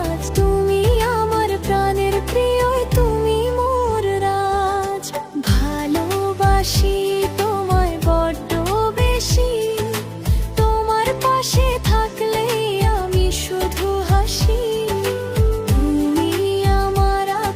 তুমি আমার প্রাণের প্রিয়, তুমি মোর রাজ। ভালোবাসি তোমায় বড্ড বেশি, তোমার পাশে থাকলেই আমি শুধু হাসি। তুমি আমার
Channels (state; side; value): identical; both; correlation 1.00